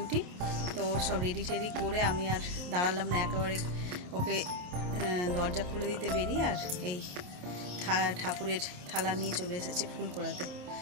তো ওর সব রেডি টেডি করে আমি আর দাঁড়ালাম না, একেবারে ওকে দরজা খুলে দিতে বেরিয়ে আর এই ঠাকুরের থালা নিয়ে চলে এসেছি ফুল কুড়াতে।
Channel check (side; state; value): left; late; 27 ms